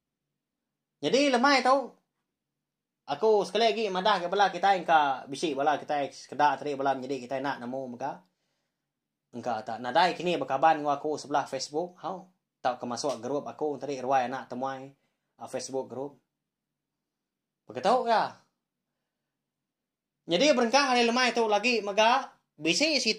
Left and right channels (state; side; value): identical; both; correlation 1.00